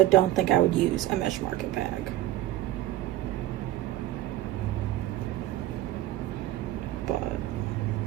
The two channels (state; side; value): quieter; left; 14.8 dB